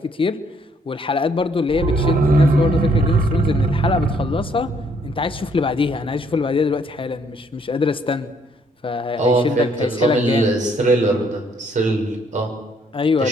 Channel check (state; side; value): normal; both; correlation 0.67